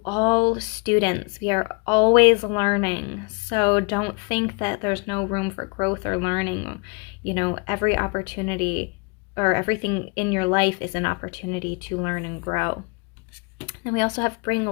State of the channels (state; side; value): quieter; right; 31.8 dB